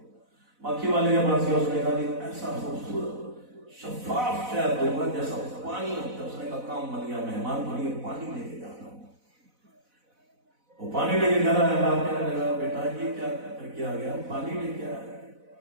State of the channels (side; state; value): left; late; 4.0 ms